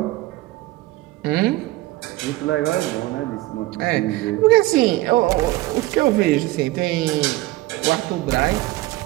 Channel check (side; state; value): left; quieter; 18.4 dB